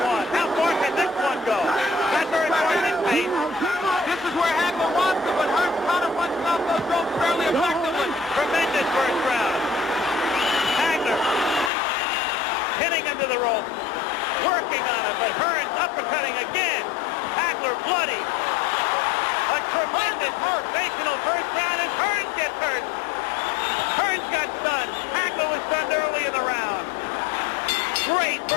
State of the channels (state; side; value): drops out; right; at 11.7 s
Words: one. How far can this one go? That's very far this pace. This is where Hagler wants it, but Hearns counterpunches off those ropes fairly effectively. Tremendous first round. Hagler hitting into the rope, working on it, but Hearns uppercutting again. Hagler bloody. A tremendous sensational first round, and Hearns gets hurt. Hearns got stunned. Hagler was stunned early in the round. Great